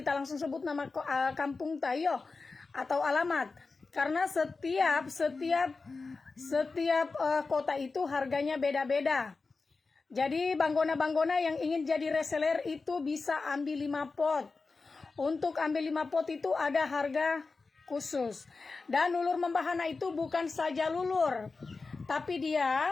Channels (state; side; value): quieter; right; 4.1 dB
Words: nama kampung tayo atau alamat. Karena setiap kota itu harganya beda-beda. Jadi banggona-banggona yang ingin jadi reseller itu bisa ambil 5 pot. Untuk ambil 5 pot itu ada harga khusus. Dan lulur membahana itu bukan saja lulur, tapi dia